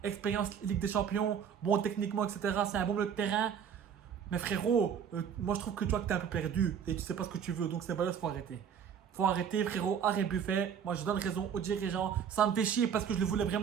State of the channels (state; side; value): quieter; left; 7.9 dB